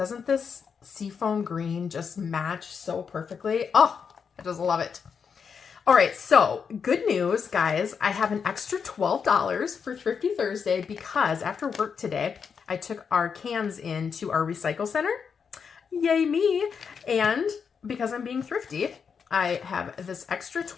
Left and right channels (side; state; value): right; quieter; 6.3 dB